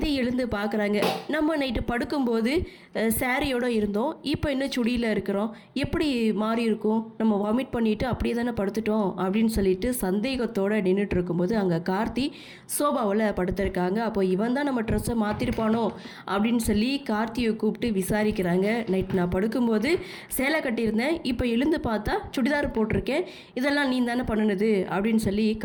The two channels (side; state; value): both; identical; correlation 1.00